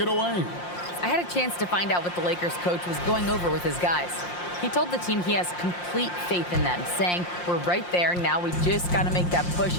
away. I had a chance to find out what the Lakers coach was going over with his guys. He told the team he has complete faith in them, saying, we're right there, now we just got to make that push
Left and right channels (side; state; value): right; late; 5.7 ms